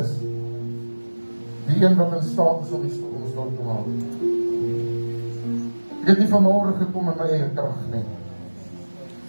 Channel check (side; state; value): both; inverted; correlation -1.00